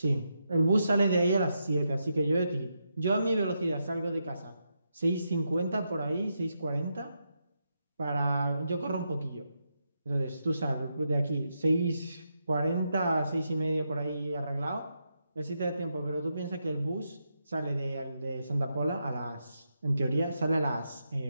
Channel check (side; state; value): both; inverted; correlation -0.83